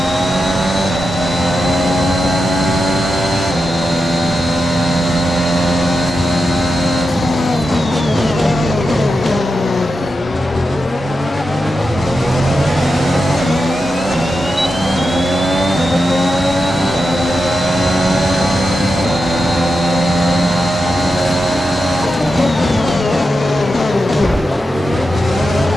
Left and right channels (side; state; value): both; normal; correlation 0.89